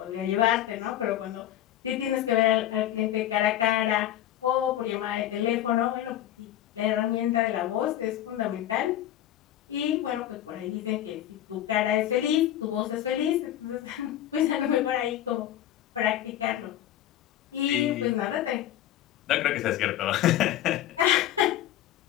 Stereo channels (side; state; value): right; quieter; 12.4 dB